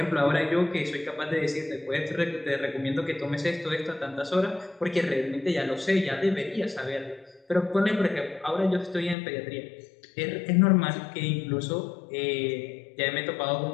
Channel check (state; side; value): drops out; right; at 9.2 s